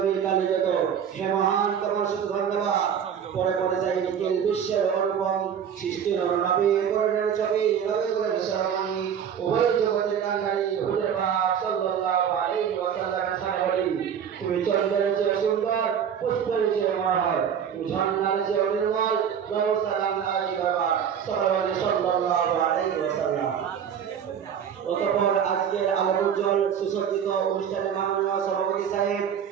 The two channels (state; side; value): quieter; left; 8.2 dB